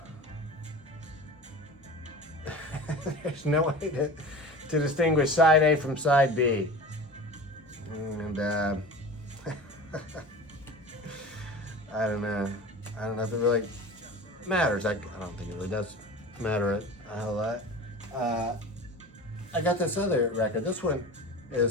there's no way to distinguish side A from side B. And I don't know. I don't know if it really matters. I don't think it really does matter a whole lot. I got this other record. This one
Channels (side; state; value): both; normal; correlation 0.35